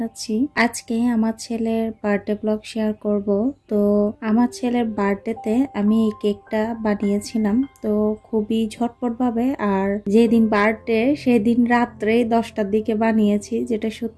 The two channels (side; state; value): both; identical; correlation 1.00